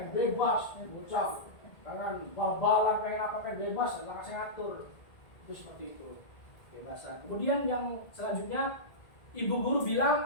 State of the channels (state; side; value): late; right; 1.8 ms